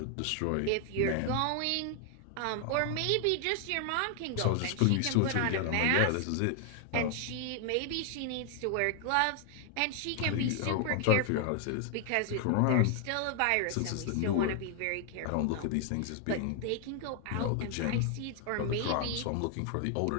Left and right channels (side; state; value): both; different; correlation 0.00